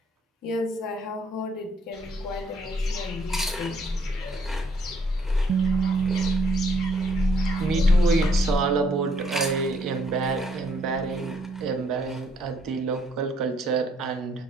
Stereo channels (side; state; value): both; normal; correlation 0.68